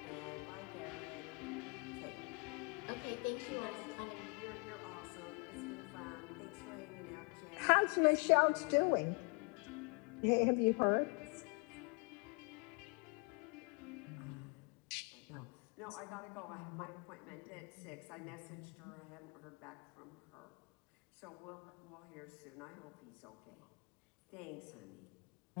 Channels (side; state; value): right; quieter; 33.8 dB